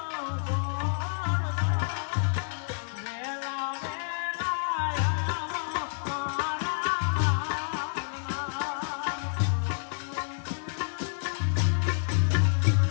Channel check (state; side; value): silent; right; digital silence